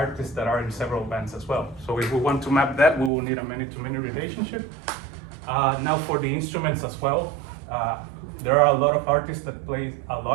that are in several bands as well. So if we want to map that, we will need a many-to-many relationship. Now for the instruments as well, there are a lot of artists that play a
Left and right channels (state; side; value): drops out; left; at 3.1 s